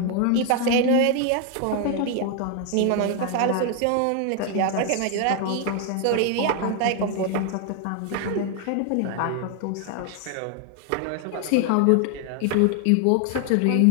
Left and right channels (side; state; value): both; different; correlation 0.00